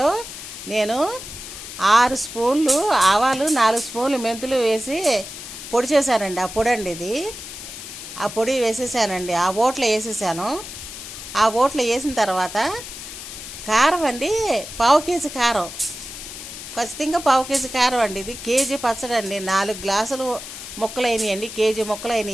నేను 6 స్పూన్లు ఆవాలు, 4 స్పూన్లు మెంతులు వేసి పొడి చేశానండి. ఆ పొడి అండి ఇది. ఆ పొడి వేసేసానండి. ఆ ఓట్లో వేసేసాను. ఆ ఓట్లో వేసిన తర్వాత కారం అండి, 1/2 కేజీ కారం, ఖచ్చితంగా 1/2 కేజీ కారం అండి. ఇది కేజీ పచ్చడి అండి. 4 గ్లాసులు ముక్కలు అయినాయండి. కేజీ ముక్కలు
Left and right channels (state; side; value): noise; left; hiss, 11 dB below the sound